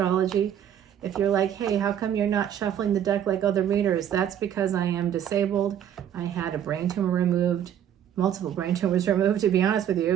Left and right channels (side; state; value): left; quieter; 9.9 dB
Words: If you're like, hey, how come you're not shuffling the deck like other readers? That's because I am disabled. I had a brain tumor removed, multiple brain tumors removed, to be honest with